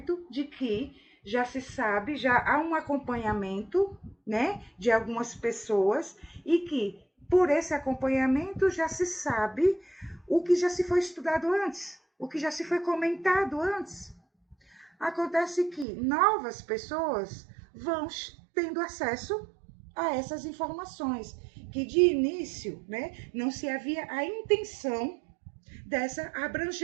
de que já se sabe, já há um acompanhamento, né, de algumas pessoas e que por esse acompanhamento já se sabe o que já se foi estudado antes, o que já se foi comentado antes. Acontece que novas pessoas vão tendo acesso a essas informações, que de início, né, não se havia a intenção dessa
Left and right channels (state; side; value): drops out; left; at 15.9 s